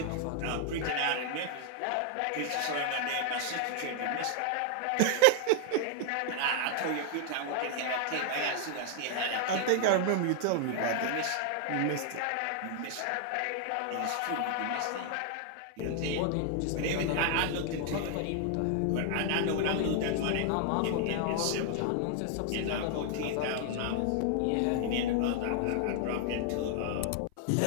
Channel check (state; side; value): different; both; correlation 0.00